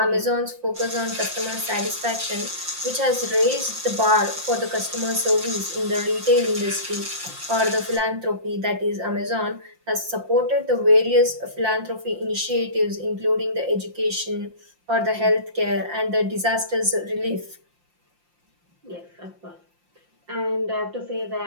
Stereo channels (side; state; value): left; late; 5.7 ms